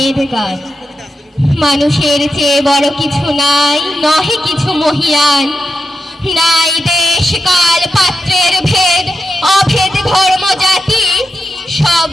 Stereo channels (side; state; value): both; normal; correlation 0.88